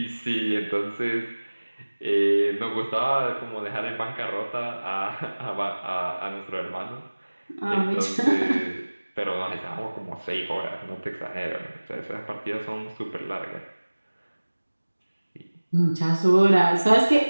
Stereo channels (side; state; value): both; inverted; correlation -1.00